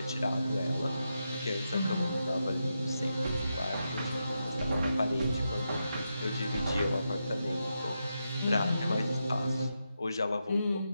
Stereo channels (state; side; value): inverted; both; correlation -0.86